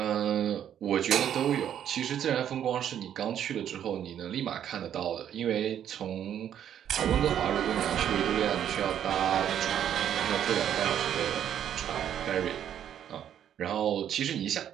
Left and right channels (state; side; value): quieter; left; 9.9 dB